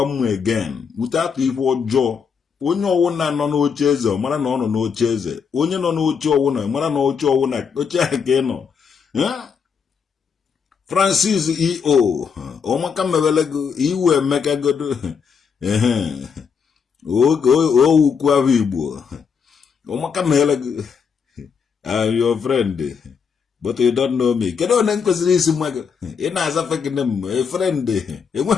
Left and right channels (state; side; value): quieter; right; 6.3 dB